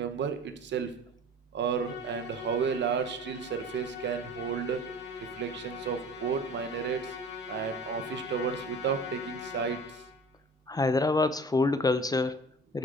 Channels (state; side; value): normal; both; correlation 0.42